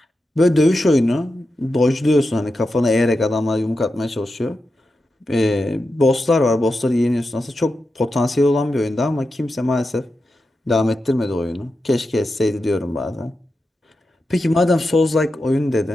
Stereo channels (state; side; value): normal; both; correlation 0.90